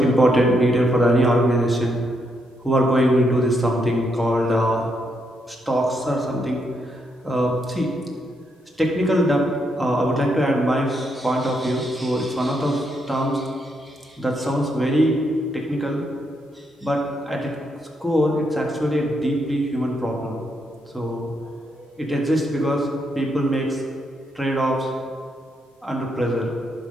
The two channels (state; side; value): normal; both; correlation 0.78